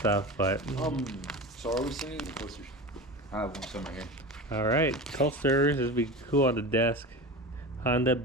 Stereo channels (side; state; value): both; normal; correlation 0.29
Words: but so are we sending the coasters? I have one somewhere here. all right, coasters. This would be cool on the desk. Honda